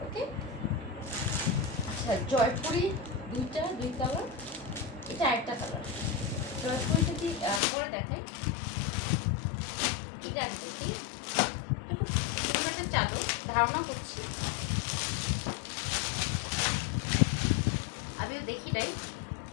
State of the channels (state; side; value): drops out; right; at 7.6 s